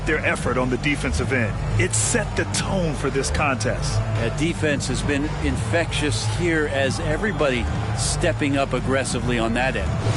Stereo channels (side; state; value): both; identical; correlation 1.00